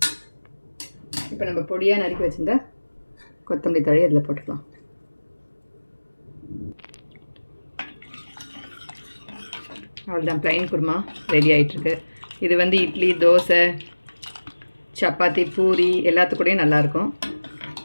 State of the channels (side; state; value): both; inverted; correlation -1.00